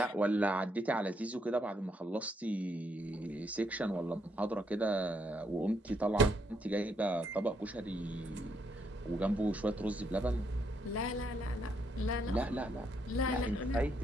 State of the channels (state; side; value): normal; both; correlation 0.75